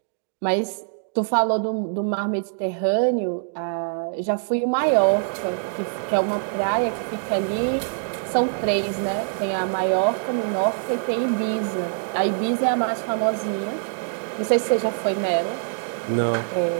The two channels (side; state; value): left; silent; digital silence